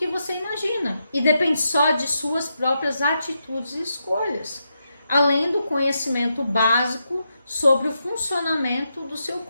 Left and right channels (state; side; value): inverted; both; correlation -0.84